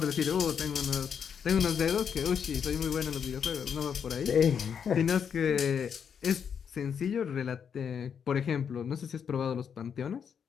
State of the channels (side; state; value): right; quieter; 7.4 dB